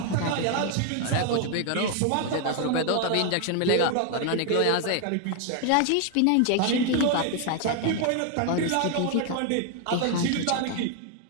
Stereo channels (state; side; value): different; both; correlation 0.00